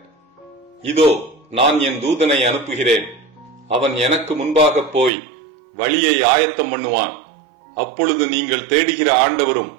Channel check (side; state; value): left; drops out; at 5.1 s